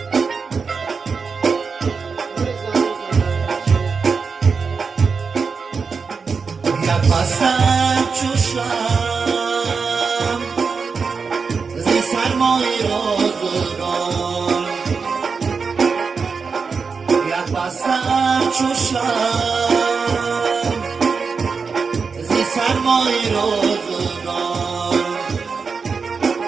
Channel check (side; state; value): left; quieter; 5.2 dB